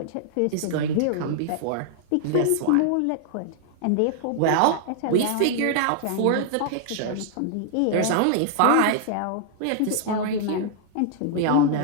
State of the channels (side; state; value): both; different; correlation -0.01